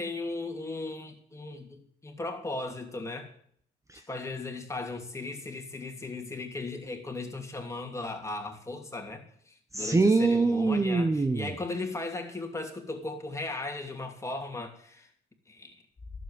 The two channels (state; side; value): normal; both; correlation 0.79